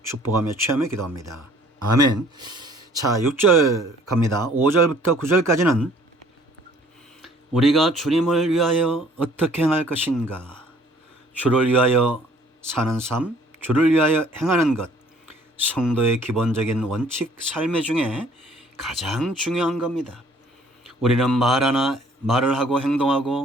축복하며 취하며 기도합니다. 아멘. 자, 6절 갑니다. 5절부터 9절까지는 우리가 주님을 위하여 어떻게 행할 것인가, 주를 위하여 사는 삶, 주를 위하여 행하는 것, 성도의 기본적인 원칙 삶의 중에 가장 중요한 겁니다. 우리는 말을 하고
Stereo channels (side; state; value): both; normal; correlation 0.57